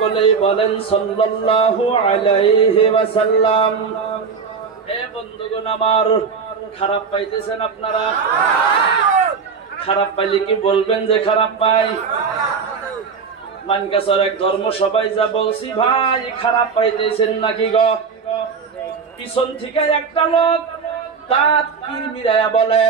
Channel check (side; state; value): left; quieter; 5.6 dB